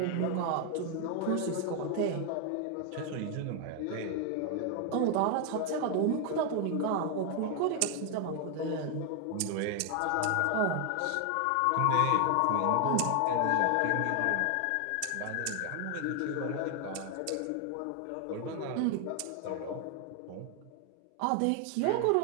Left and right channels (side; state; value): both; different; correlation 0.00